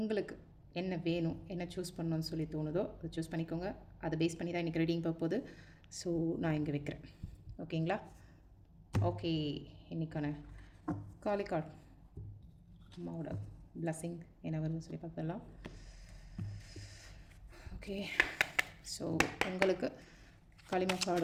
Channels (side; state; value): both; identical; correlation 1.00